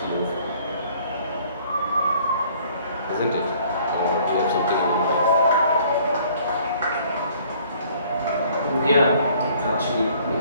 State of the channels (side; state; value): both; inverted; correlation -0.57